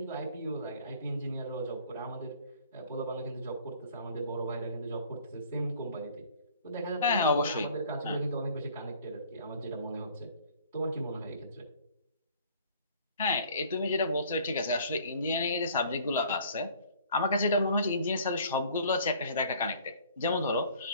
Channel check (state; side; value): inverted; both; correlation -0.53